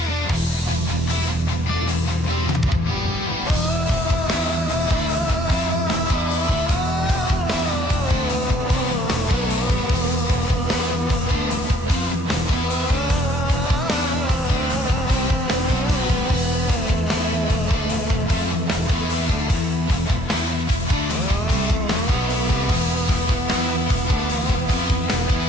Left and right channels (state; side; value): normal; both; correlation 0.62